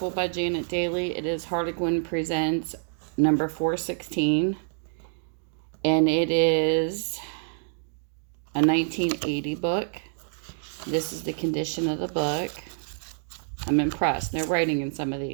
by Janet Dailey. It is Harlequin Presents number 416. And it is a 1980 book. This is the condition of the book. I'm impressed. No writing in some of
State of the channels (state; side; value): silent; left; digital silence